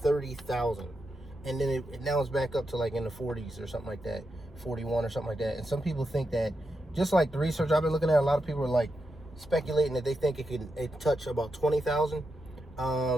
And then now it's back up to like in the 40s or something like that, 41 or something like that. And some people think that, just like the research I've been looking at, a lot of people are like speculating that they think it touch about 20,000.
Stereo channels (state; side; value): normal; both; correlation 0.86